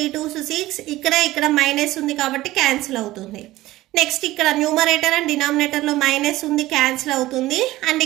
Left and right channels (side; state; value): left; quieter; 16.9 dB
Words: 2s 6. ఇక్కడ minus ఉంది కాబట్టి cancel అవుతుంది. Next ఇక్కడ numerator and డినామినేటర్లో minus ఉంది, cancel అవుతుంది. అండ్